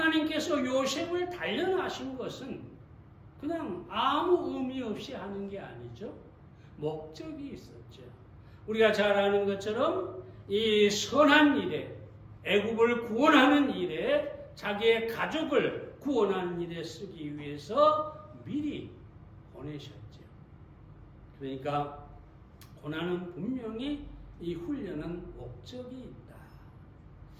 요셉을 단련하신 것은 그냥 아무 의미 없이 하는 게 아니죠. 목적이 있었죠. 우리가 잘 아는 것처럼 이 선한 일에, 애굽을 구원하는 일에, 자기의 가족을 구원하는 일에 쓰기 위해서 미리 보내셨죠. 그러니까 고난은 분명히 이 훈련은 목적이 있다.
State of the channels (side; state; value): both; identical; correlation 1.00